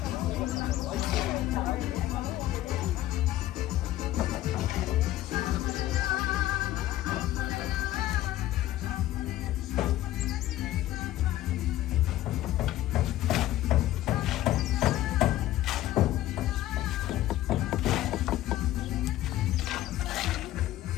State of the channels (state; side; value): quieter; right; 14.5 dB